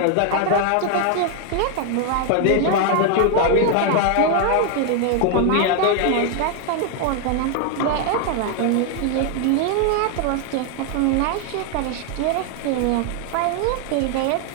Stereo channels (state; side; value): different; both; correlation 0.00